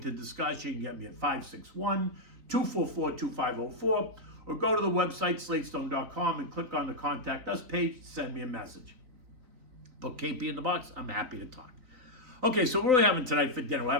discuss. You can get me at 561-244-2504, or go to the website, slatestone.com, and click on the Contact Us page. Send me a message. Put KP in the box. I'm happy to talk. Okay, so what are we having tonight for dinner? We're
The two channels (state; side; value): late; left; 3.9 ms